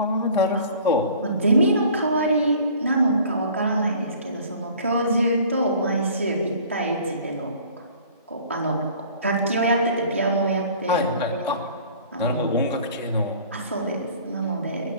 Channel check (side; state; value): both; inverted; correlation -0.49